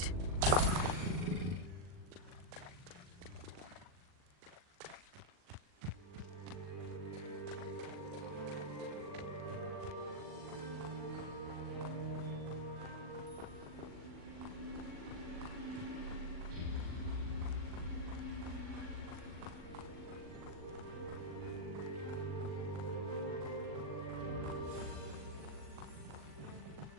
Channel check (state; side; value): late; left; 40 ms